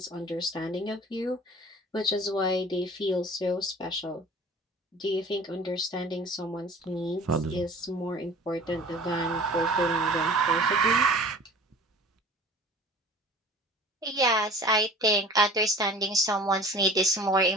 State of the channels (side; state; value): both; normal; correlation 0.43